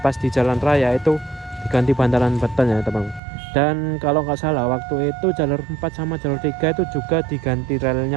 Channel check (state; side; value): drops out; left; at 3.2 s